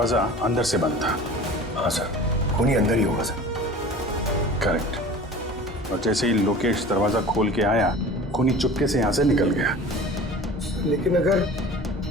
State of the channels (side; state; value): both; normal; correlation 0.40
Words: अंदर से बंद था। हाँ सर, खूनी अंदर ही होगा सर। करेक्ट। और जैसे ही लोकेश दरवाजा खोल के आया, खूनी चुपके से यहाँ से निकल गया। लेकिन अगर